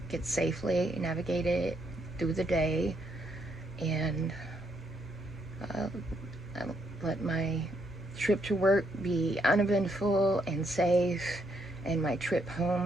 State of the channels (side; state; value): both; normal; correlation 0.75